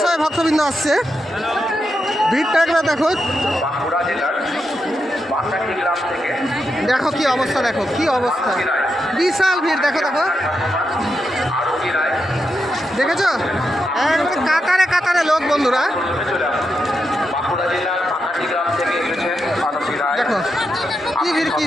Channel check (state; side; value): normal; both; correlation 0.85